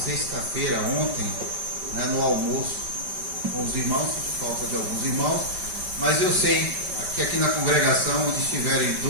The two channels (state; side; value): late; left; 5.1 ms